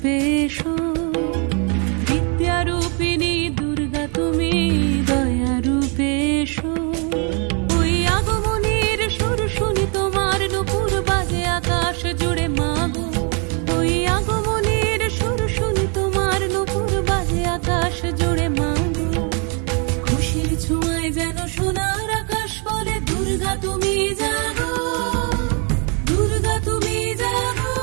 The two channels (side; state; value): left; quieter; 36.2 dB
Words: এসো, বিদ্যারূপিণী দুর্গা তুমি দয়া রূপে এসো। ওই আগমনীর সুর শুনি তোমার নূপুর বাজে আকাশ জুড়ে মাগো। ওই আগমনীর সুর শুনি তোমার নূপুর বাজে আকাশ জুড়ে মাগো। খুশির ছোঁয়ায় যেন সোনার আকাশ বলে দুর্গা তুমি জাগো, দুর্গা তুমি জাগো,